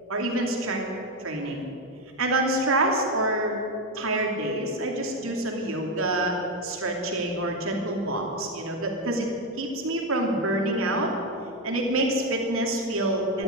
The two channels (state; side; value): normal; both; correlation 0.10